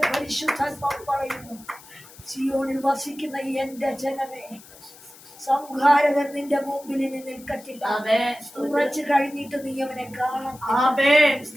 പരിശുദ്ധാത്മാവ് പറയുന്നു, സിയോണിൽ വസിക്കുന്ന എന്റെ ജനമേ, സംഹാരകൻ നിന്റെ മുമ്പിൽ ഇനി നിൽക്കത്തില്ല. ഉറച്ചു കഴിഞ്ഞിട്ട് നീ അവനെ കാണാം.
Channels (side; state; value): left; noise; hiss, 21 dB below the sound